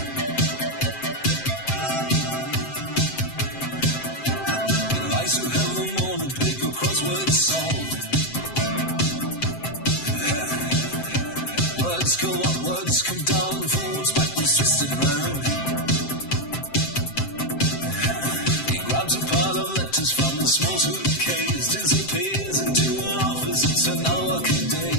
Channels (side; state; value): right; late; 7.6 ms